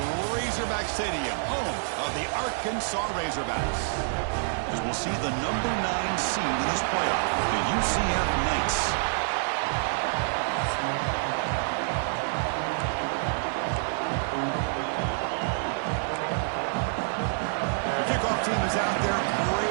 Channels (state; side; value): silent; left; 60 dB below the other